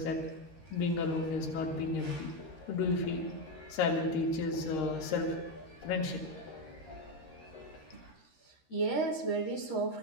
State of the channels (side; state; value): right; late; 13 ms